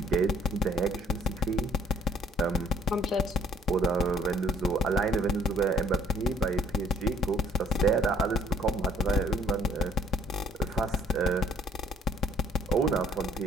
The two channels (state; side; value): normal; both; correlation 0.59